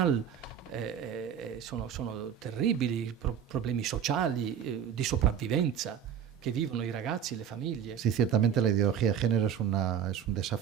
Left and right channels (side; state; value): left; quieter; 8.7 dB